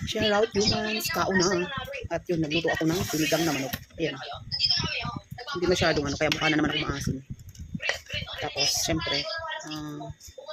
Shout out humans, kauna. At yun, nagluto ako ng sinigang na manok. Ayan. Hindi masyadong ano, kaya mukha na naman ako maasim. Tapos, syempre,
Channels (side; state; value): both; identical; correlation 1.00